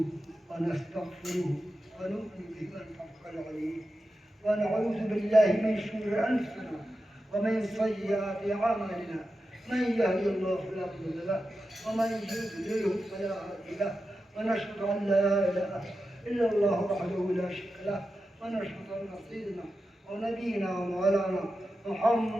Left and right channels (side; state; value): both; normal; correlation 0.91